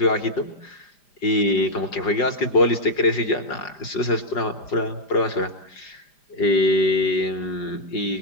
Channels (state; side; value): late; right; 5.0 ms